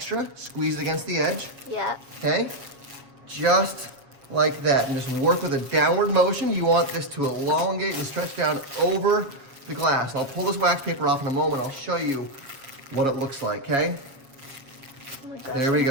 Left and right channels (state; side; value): late; left; 7.3 ms